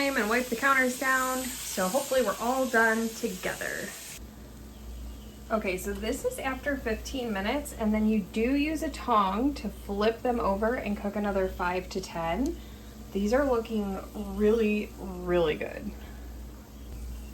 and wipe the counters down. So hopefully we're all done together. Okay, so this is after 15 minutes, and then you do use a tong to flip them over and cook another 5 to 10. These are looking really, really good.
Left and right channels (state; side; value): identical; both; correlation 1.00